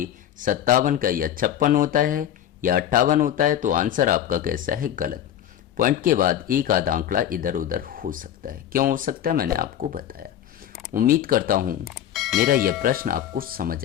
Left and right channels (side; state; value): right; quieter; 10.8 dB